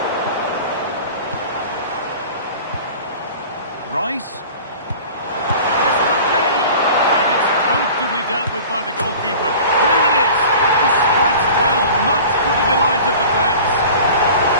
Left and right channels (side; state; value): both; inverted; correlation -0.41